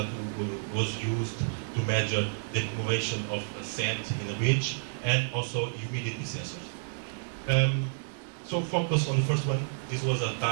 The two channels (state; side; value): silent; left; digital silence